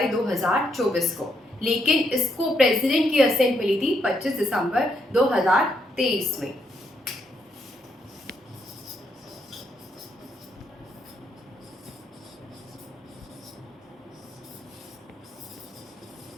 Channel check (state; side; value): normal; both; correlation 0.77